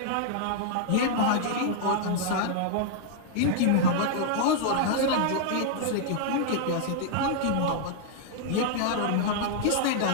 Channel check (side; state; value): both; different; correlation -0.01